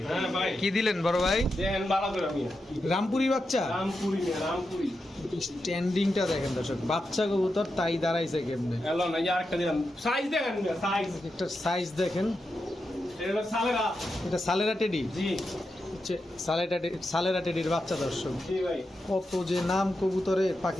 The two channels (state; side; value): normal; both; correlation 0.88